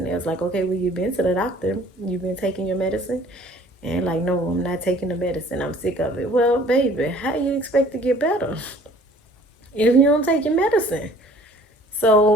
it was like, okay, well, you've been to the doctor. You've been taking your medicine. And like, no, I'm not taking the medicine. I'm sick of it. Well, baby, how do you expect to get better if you don't take your medicine?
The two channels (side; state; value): both; normal; correlation 0.53